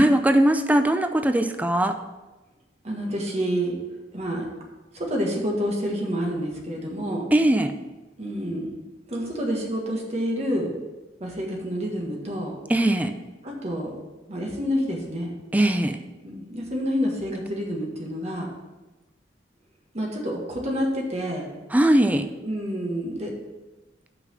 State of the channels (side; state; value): both; normal; correlation 0.83